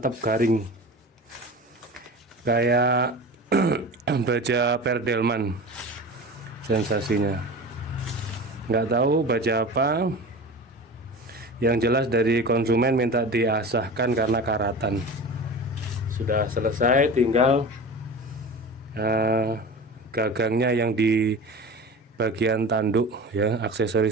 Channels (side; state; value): both; normal; correlation 0.33